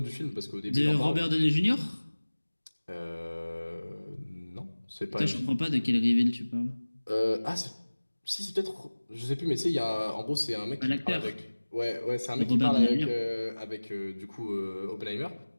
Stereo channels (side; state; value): both; inverted; correlation -1.00